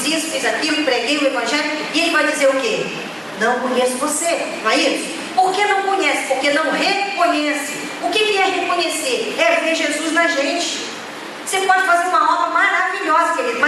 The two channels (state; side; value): identical; both; correlation 1.00